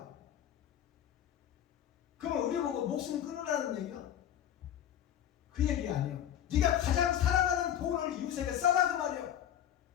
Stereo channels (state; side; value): quieter; right; 10.6 dB